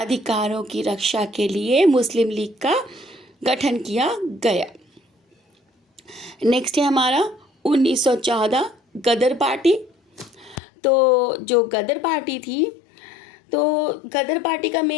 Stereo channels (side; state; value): right; drops out; at 10.6 s